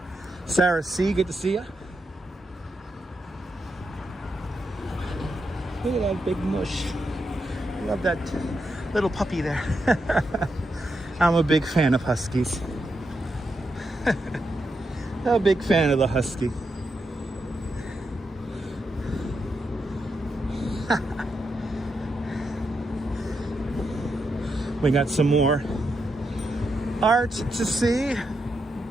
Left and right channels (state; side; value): normal; both; correlation 0.84